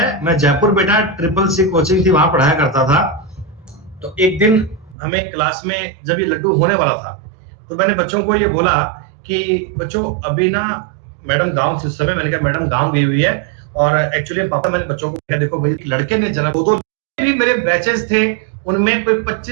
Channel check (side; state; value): left; drops out; at 5.0 s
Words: मैं जयपुर बेटा CCC कोचिंग थी वहां पढ़ाया करता था, तो एक दिन हमें क्लास में जब ये लड्डू होने वाला था तो मैंने बच्चों को ये बोला कि बच्चों अभी ना मैडम गांव से, उस समय मैंने कहा मैडम गांव गई हुई है, और एक्चुअली पापा मैंने बच्चों को कहा देखो भाई लड़के ने जन्म, दो भी मेरे बैचेस थे उनमें कोई